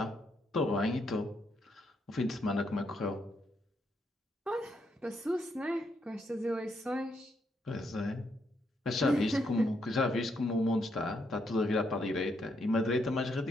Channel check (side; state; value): both; normal; correlation 0.77